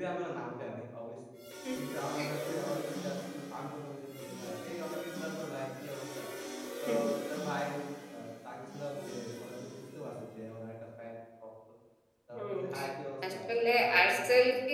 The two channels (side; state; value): both; identical; correlation 1.00